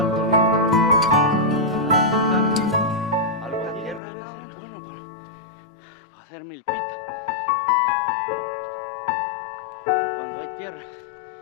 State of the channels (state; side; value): drops out; right; at 4.0 s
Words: Hacer milpita cuando hay tierra